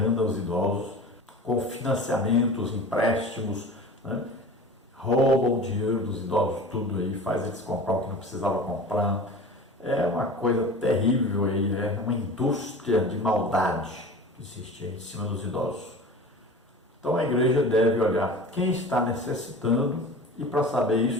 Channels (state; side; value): normal; both; correlation 0.36